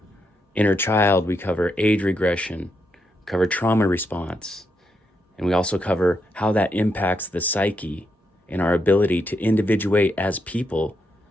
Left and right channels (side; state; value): both; normal; correlation 0.81